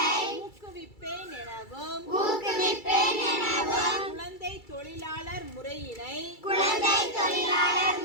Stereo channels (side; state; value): right; late; 2.3 ms